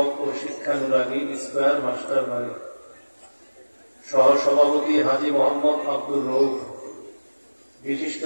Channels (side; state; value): both; inverted; correlation -1.00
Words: ও শিক্ষানুরাগী স্কয়ার মাস্টার বাড়ি, সহসভাপতি হাজী মোহাম্মদ আব্দুর রউফ, বিশিষ্ট